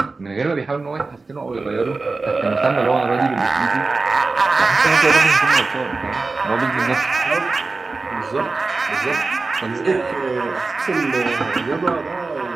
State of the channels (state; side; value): quieter; left; 3.8 dB